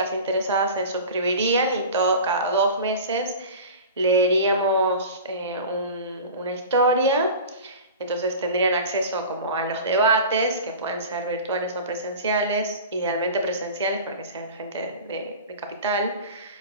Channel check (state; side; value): inverted; both; correlation -0.36